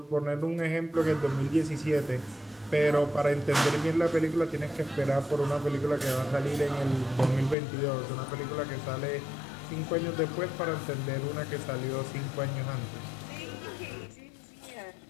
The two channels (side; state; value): right; drops out; at 7.6 s